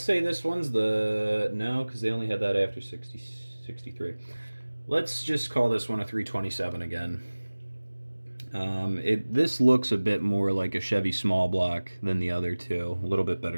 say this one's the... No, because they only had that after 63. Let's just call this one a 327 again. This looks a bit more like a Chevy small block than the other two. A little bit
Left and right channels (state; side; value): inverted; both; correlation -1.00